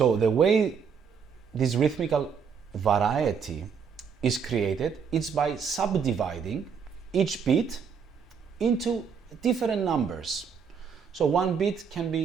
the way this rhythmical variety is created, it's by subdividing each beat into different numbers. So one beat can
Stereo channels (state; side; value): quieter; left; 6.5 dB